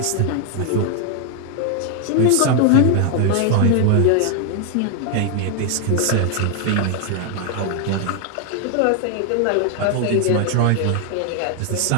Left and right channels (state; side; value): different; both; correlation 0.00